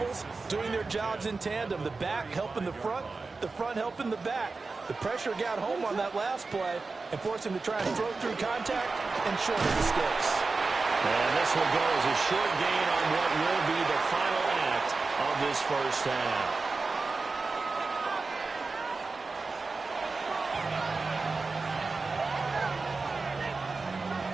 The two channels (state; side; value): quieter; left; 4.0 dB